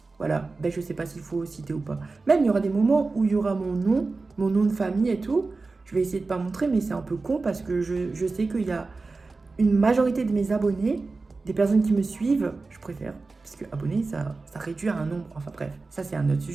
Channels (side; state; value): left; quieter; 3.8 dB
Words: Voilà, je sais pas s'il faut citer ou pas. Même il y aura des moments où il y aura mon nom de famille et tout. Je vais essayer de pas montrer, mais c'est un peu con parce que je sais qu'il y a une majorité de mes abonnés, des personnes qui me suivent, je préfère, parce que abonnés, ça réduit à un nombre. Enfin bref, ça c'est un autre